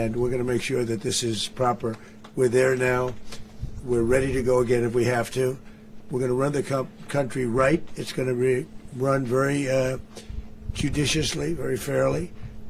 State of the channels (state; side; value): identical; both; correlation 1.00